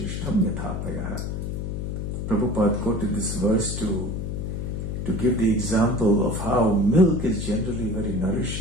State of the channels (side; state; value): left; noise; hum, 3 dB below the sound